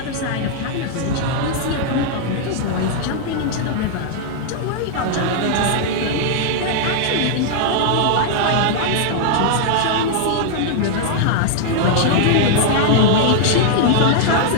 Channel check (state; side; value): different; both; correlation -0.01